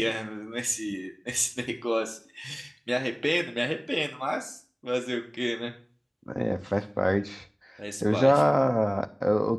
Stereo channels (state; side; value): identical; both; correlation 1.00